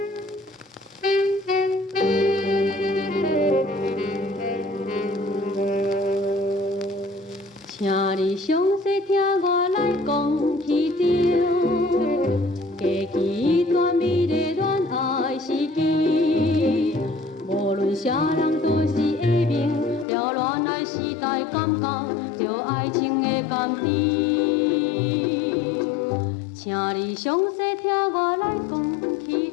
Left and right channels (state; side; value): drops out; right; at 20.1 s